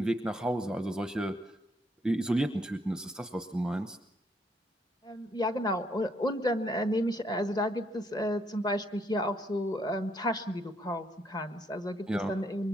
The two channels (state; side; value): normal; both; correlation 0.72